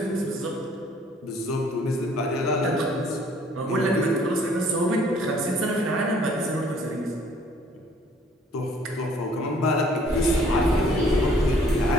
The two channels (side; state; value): both; normal; correlation 0.59